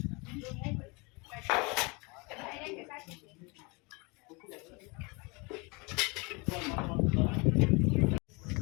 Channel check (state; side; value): quieter; right; 28.7 dB